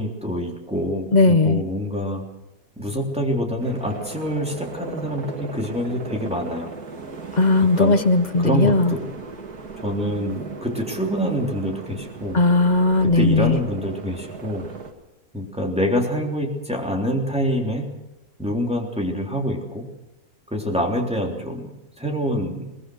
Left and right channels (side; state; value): both; normal; correlation -0.09